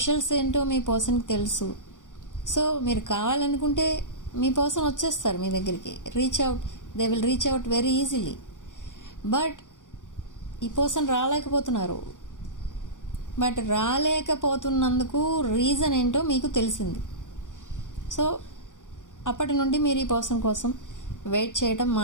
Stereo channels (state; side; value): late; right; 0.87 ms